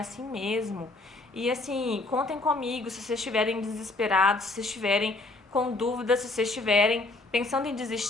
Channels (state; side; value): quieter; right; 3.1 dB